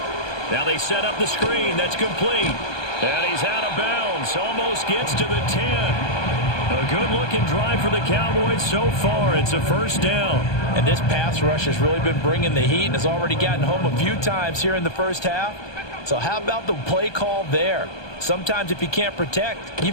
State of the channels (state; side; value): late; right; 1.2 ms